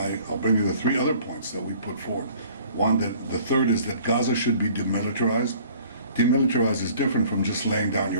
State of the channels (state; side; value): inverted; both; correlation -0.52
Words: bring you the 3 other points that we put forward. One, the third is that Gaza should be demilitarized. Demilitarized is different from just laying down